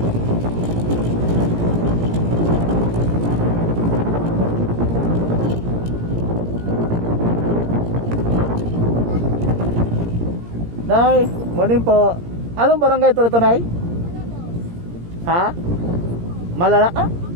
Nay, morning po. Anong barangay ito Nay? Ha? Malala? Ah?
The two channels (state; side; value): late; left; 17 ms